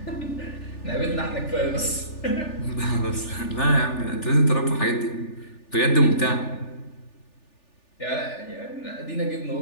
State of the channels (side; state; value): right; late; 3.4 ms